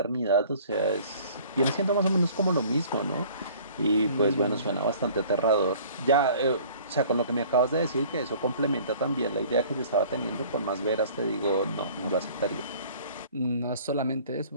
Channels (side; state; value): both; inverted; correlation -0.51